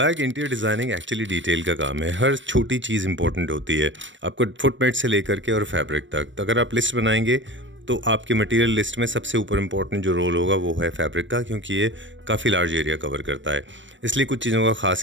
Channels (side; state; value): left; late; 0.54 ms